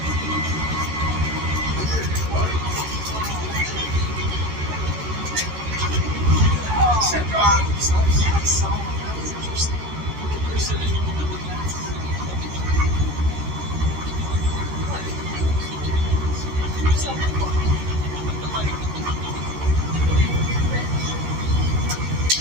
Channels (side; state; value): left; late; 14 ms